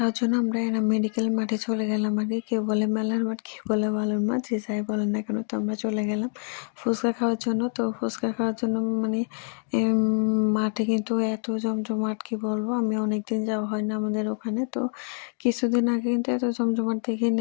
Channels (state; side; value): silent; right; 58 dB below the other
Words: জন্য আমরা এনাম মেডিকেল মাঠে চলে গেলাম আগে। কেউ বলে মেলার মাঠ, কেউ বলে বালুর মাঠ। যে যাই বলেন না কেন, তো আমরা চলে গেলাম ফুচকা খাওয়ার জন্য। তো ফুচকা খাওয়ার জন্য মানে মাঠে কিন্তু এত জমজমাট, কি বলবো, আমি অনেকদিন যাওয়া হয় না আমাদের ওখানে। তো কিছুদিন আগে কিন্তু এত জমজমাট